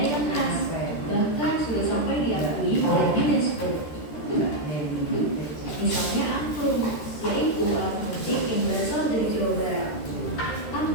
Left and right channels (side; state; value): right; late; 13 ms